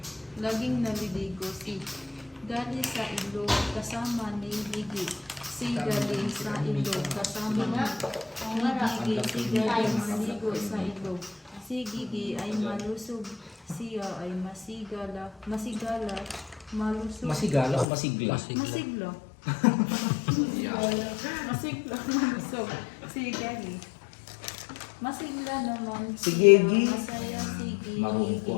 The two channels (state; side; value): drops out; right; at 17.9 s